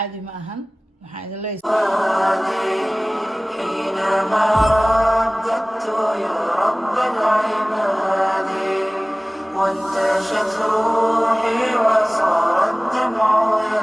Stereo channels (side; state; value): both; normal; correlation 0.98